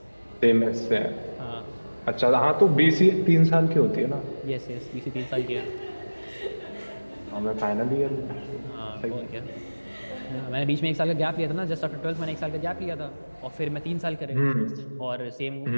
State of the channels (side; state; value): both; inverted; correlation -1.00